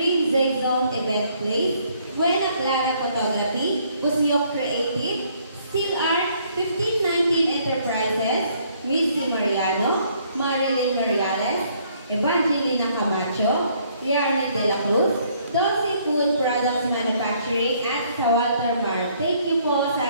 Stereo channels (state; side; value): inverted; both; correlation -0.65